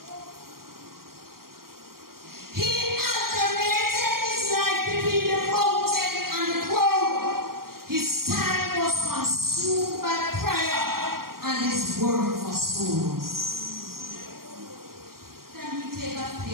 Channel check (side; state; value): left; late; 0.93 ms